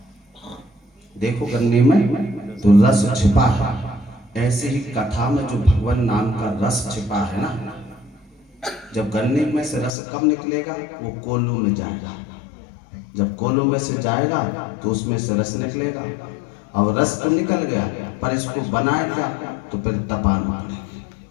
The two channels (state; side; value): drops out; right; at 9.9 s